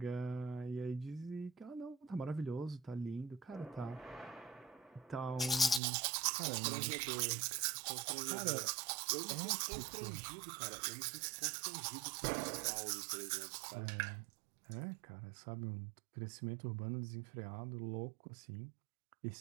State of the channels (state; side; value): drops out; left; at 5.8 s